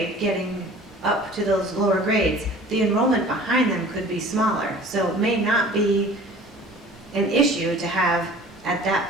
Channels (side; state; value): both; normal; correlation 0.45